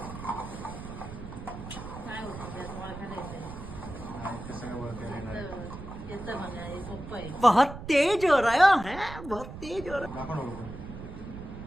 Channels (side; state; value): right; noise; rumble, 11 dB below the sound